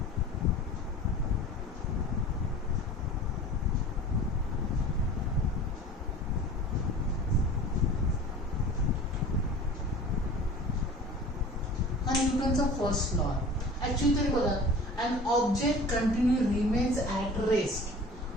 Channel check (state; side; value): normal; both; correlation 0.41